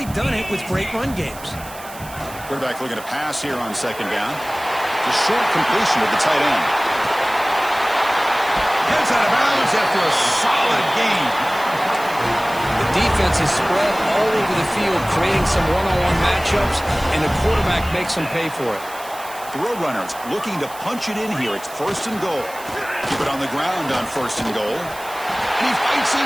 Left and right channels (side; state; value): right; noise; hiss, 17 dB below the sound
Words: done it with great run games. Quarterback looking to pass here on second down. The short completion of the tight end. Gets out of bounds after a solid gain. The defense is spread all over the field, creating some one-on-one matchups, and the quarterback makes them pay for it. The Roadrunners looking to punch it in here. It's first and goal. Keep it on the ground on first and goal. And he fights